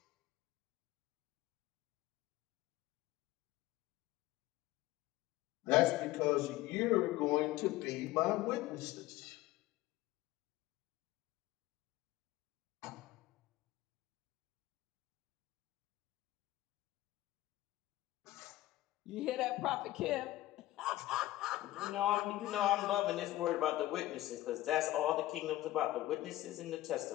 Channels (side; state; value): right; quieter; 16.3 dB